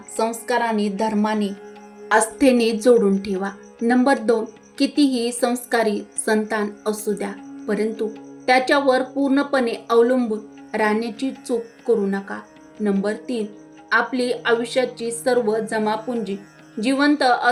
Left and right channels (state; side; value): identical; both; correlation 1.00